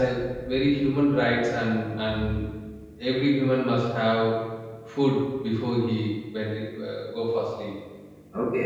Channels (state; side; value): identical; both; correlation 1.00